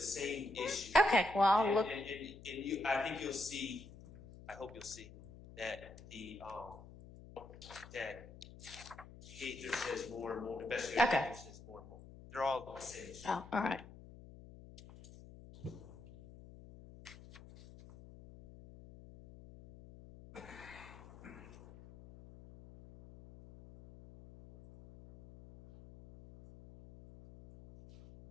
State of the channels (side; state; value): left; noise; hum, 17 dB below the sound